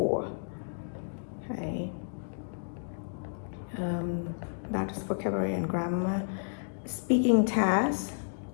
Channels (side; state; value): right; silent; digital silence